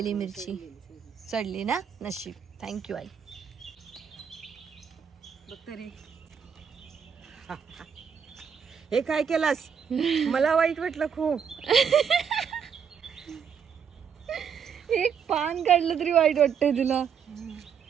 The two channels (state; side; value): quieter; left; 7.2 dB